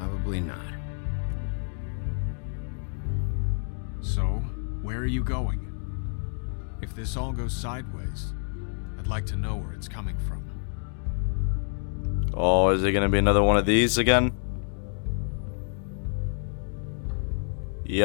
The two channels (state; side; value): silent; right; 59 dB below the other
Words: not. So, where are you going? If this all goes sideways, I'd like to know where it's coming from. Oh, is it gonna be another one of these again?